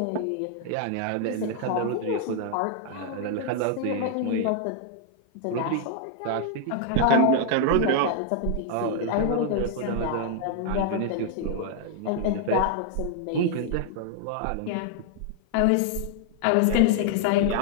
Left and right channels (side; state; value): both; different; correlation 0.00